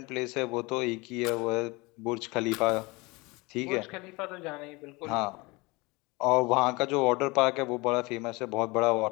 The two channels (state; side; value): quieter; right; 24.7 dB